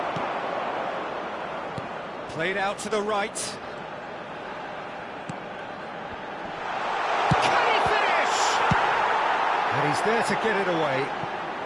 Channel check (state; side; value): identical; both; correlation 1.00